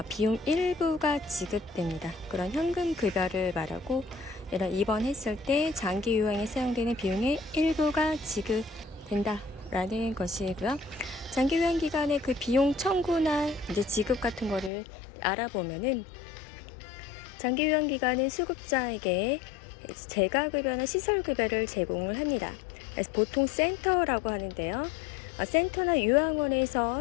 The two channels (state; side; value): drops out; right; at 14.7 s